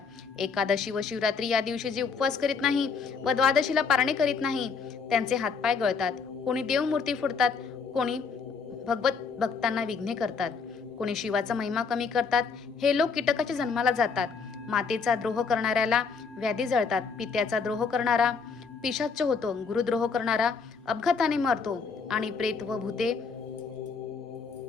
एकादशी व शिवरात्री या दिवशी जे उपवास करीत नाही व द्वादशीला पारणे करीत नाही त्यांचे हातपाय गळतात. कोणी देवमूर्ती फोडतात, कोणी भक्तांना विघ्ने करतात, कोणी शिवाचा महिमा कमी करतात. हे लोक कीटकाच्या जन्माला जातात. मातेचा द्रोह करणाऱ्याला व्याधी जळतात. पित्याचा द्रोह करणारा पिशाच्च होतो. गुरुद्रोह करणारा अपघाताने मरतो आणि प्रेत व भूते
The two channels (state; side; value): quieter; right; 5.3 dB